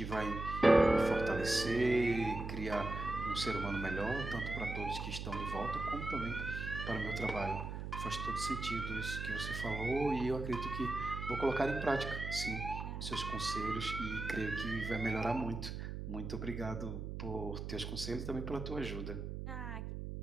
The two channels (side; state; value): right; noise; hum, 6 dB below the sound